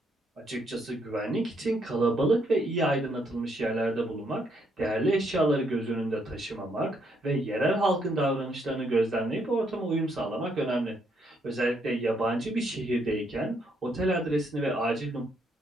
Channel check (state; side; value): normal; both; correlation 0.73